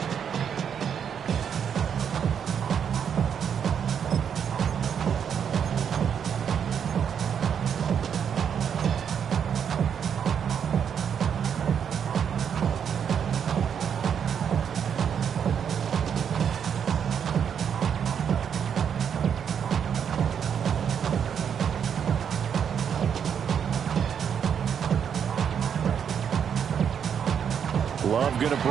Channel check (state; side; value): quieter; left; 7.9 dB